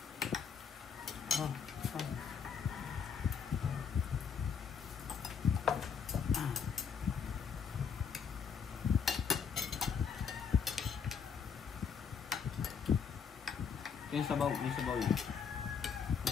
Yung sabaw, may sabaw yun.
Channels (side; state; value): right; quieter; 6.7 dB